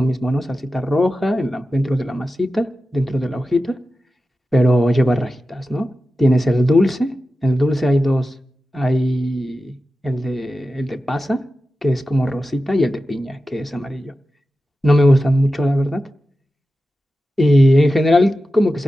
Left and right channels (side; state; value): both; normal; correlation 0.93